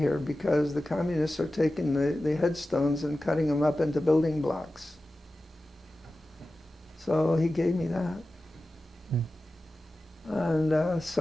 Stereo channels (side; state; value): both; normal; correlation 0.95